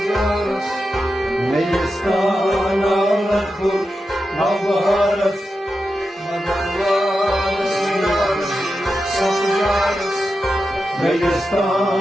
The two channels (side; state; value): both; normal; correlation 0.89